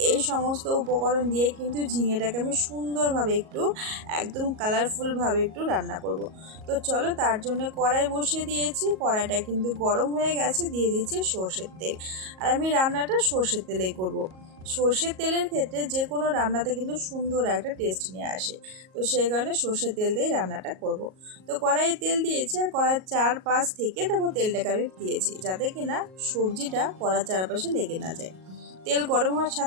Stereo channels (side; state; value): left; late; 38 ms